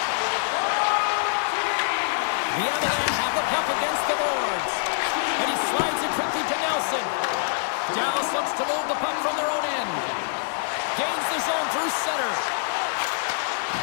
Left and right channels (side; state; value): right; silent; digital silence